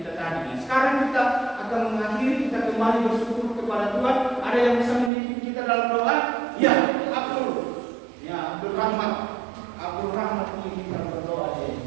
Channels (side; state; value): left; drops out; at 5.1 s